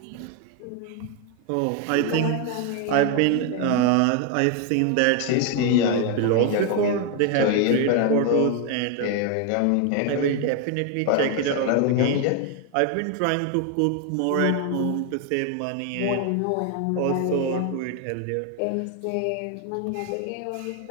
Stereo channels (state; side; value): different; both; correlation 0.01